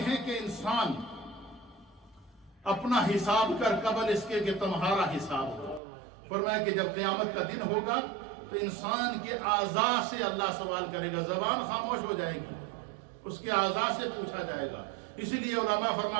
ہیں کہ انسان اپنا حساب کر قبل اس کے کہ تمہارا حساب ہو۔ فرمایا کہ جب قیامت کا دن ہوگا تو انسان کے اعضاء سے اللہ سوال کرے گا، زبان خاموش ہو جائے گی، اس کے اعضاء سے پوچھا جائے گا۔ اسی لیے علماء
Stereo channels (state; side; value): drops out; left; at 5.8 s